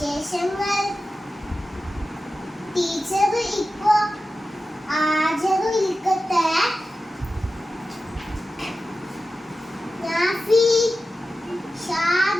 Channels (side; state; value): both; normal; correlation 0.93